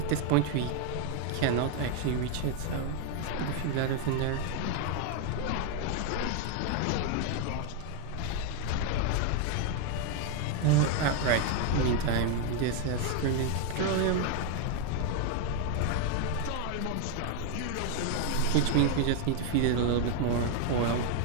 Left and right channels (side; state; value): both; different; correlation 0.01